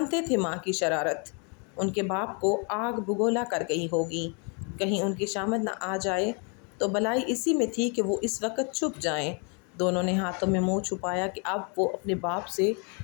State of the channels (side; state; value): right; quieter; 36.1 dB